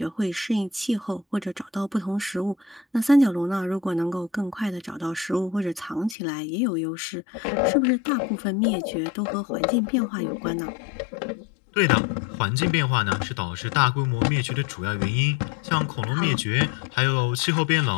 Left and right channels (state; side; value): drops out; right; at 6.2 s